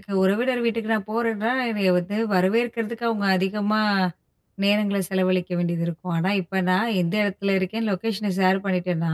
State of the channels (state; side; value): identical; both; correlation 1.00